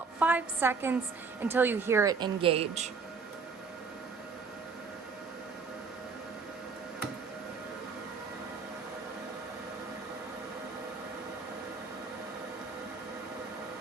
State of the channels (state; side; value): quieter; left; 5.0 dB